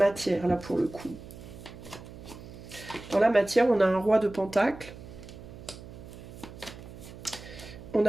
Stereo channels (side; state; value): right; noise; hum, 15 dB below the sound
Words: là, pour le coup? Dans la matière, on a un roi de pentacle. On